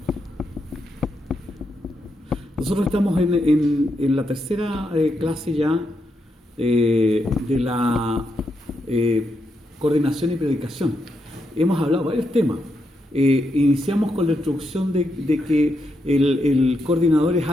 Nosotros estamos en la tercera clase ya de la coordinación y predicación. Hemos hablado varios temas. Iniciamos con la introducción de que el coordinador es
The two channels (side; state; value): both; normal; correlation 0.82